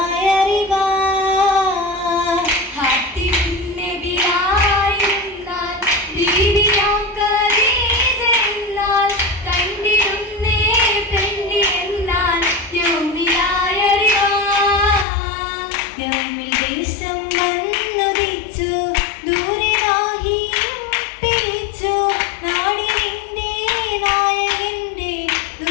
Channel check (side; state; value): right; drops out; at 15.1 s